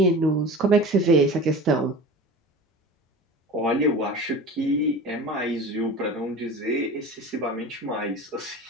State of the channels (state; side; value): normal; both; correlation 0.35